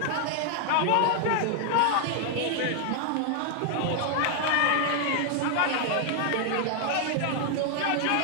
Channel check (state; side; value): different; both; correlation 0.00